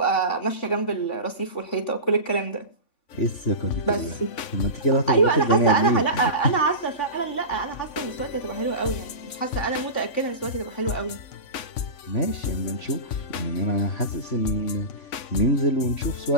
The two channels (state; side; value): late; right; 3.5 ms